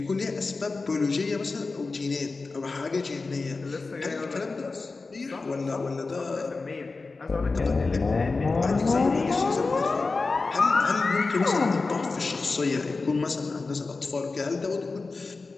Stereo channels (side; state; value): right; quieter; 3.9 dB